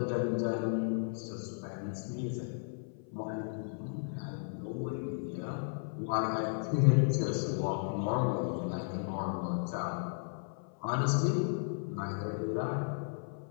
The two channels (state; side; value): silent; right; 55 dB below the other